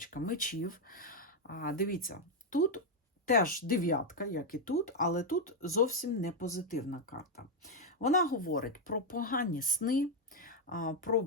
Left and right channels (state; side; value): normal; both; correlation 0.02